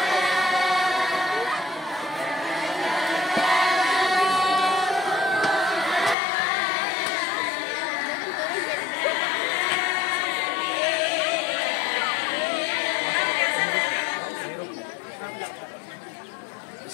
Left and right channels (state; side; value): drops out; right; at 6.2 s